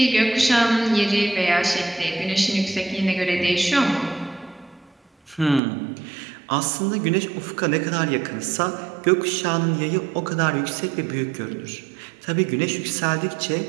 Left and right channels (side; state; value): left; drops out; at 5.6 s